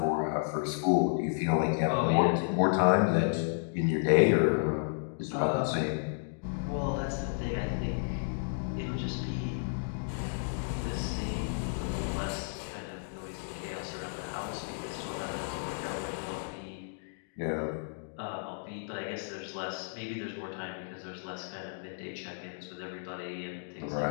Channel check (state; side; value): silent; right; digital silence